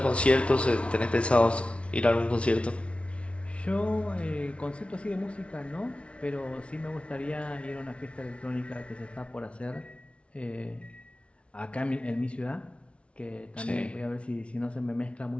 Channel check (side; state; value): right; late; 0.061 ms